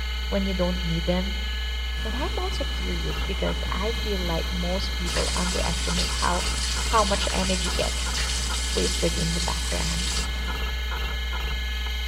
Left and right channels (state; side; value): identical; both; correlation 1.00